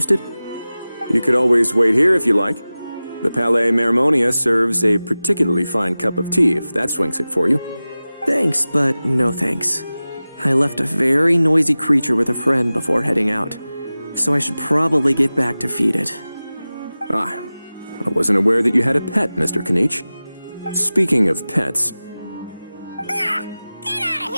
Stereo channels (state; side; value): inverted; both; correlation -0.97